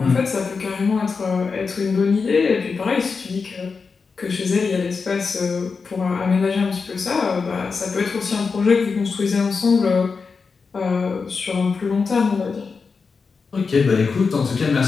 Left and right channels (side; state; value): right; quieter; 5.0 dB